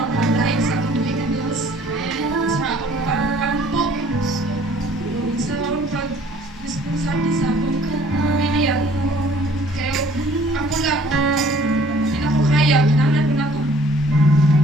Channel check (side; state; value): both; normal; correlation 0.56